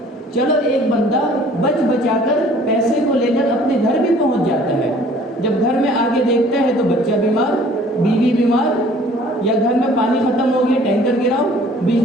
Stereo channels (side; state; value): both; normal; correlation 0.53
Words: چلو ایک بندہ بچ بچا کر پیسے کو لے کر اپنے گھر بھی پہنچ جاتا ہے، جب گھر میں آگے دیکھتا ہے تو بچہ بیمار، بیوی بیمار، یا گھر میں پانی ختم ہو گیا، ٹینکر گراؤ،